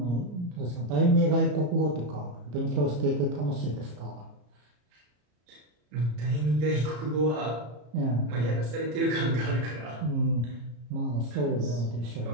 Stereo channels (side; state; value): left; late; 34 ms